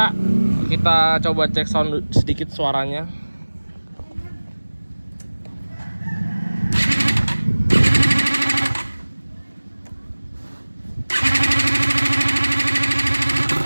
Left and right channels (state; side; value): inverted; both; correlation -1.00